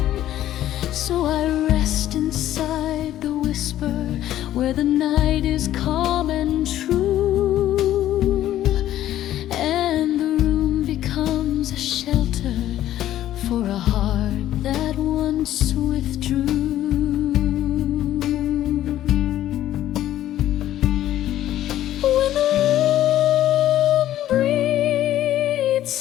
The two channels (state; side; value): quieter; right; 12.8 dB